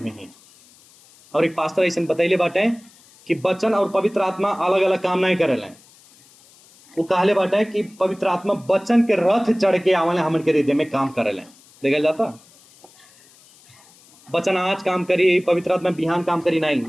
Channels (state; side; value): noise; left; hiss, 27 dB below the sound